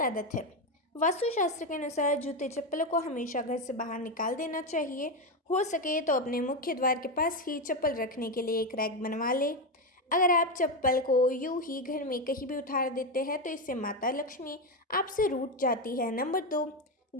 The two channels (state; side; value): normal; both; correlation 0.11